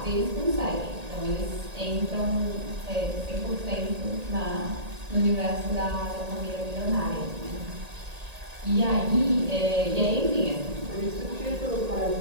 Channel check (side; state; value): left; late; 1.8 ms